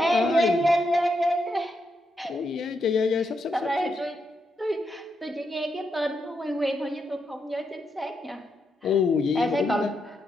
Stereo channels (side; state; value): both; normal; correlation 0.82